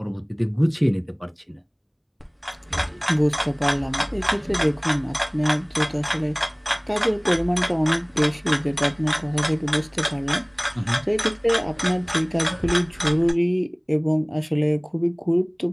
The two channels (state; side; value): identical; both; correlation 1.00